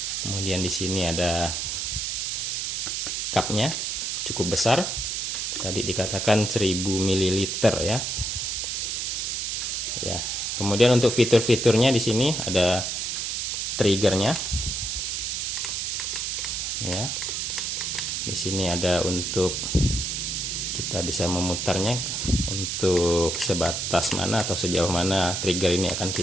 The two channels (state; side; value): noise; right; hiss, 1 dB below the sound